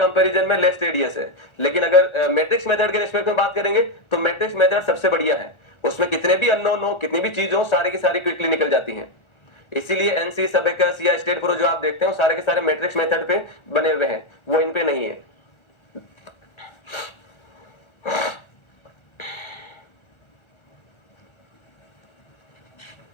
में लेस टेडियस है. लेकिन अगर मैट्रिक्स मेथड के रेस्पेक्ट में बात करेंगे तो मैट्रिक्स मेथड सबसे बढ़िया है. उसमें कितने भी अननोन हो, कितनी भी चीज हो, सारे की सारी क्विकली निकल जाती हैं. इसीलिए एनसी, सबेकस या स्टेट प्रो जो आप देखते हैं सारे के सारे मैट्रिक्स मेथड पे बने हुए हैं, वो इन पे नहीं है.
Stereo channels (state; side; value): late; right; 1.4 ms